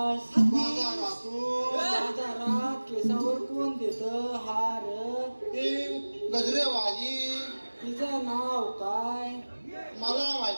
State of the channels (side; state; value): both; inverted; correlation -1.00